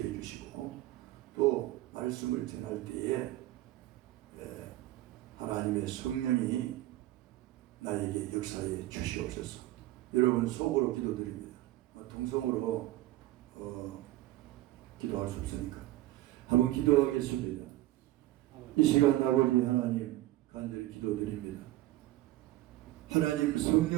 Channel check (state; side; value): quieter; left; 16.2 dB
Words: 주시고 또 말씀을 전할 때에 하나님의 성령이 나에게 역사해 주시옵소서. 여러분 속으로 기도드립니다. 통성으로 기도할 수 없으니까 한번 기도하겠습니다. 이 시간 아버지 하나님 간절히 기도드립니다. 하나님